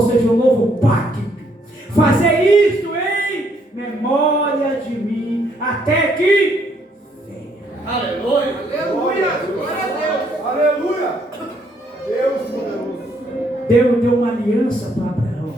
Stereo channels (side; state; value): both; normal; correlation 0.70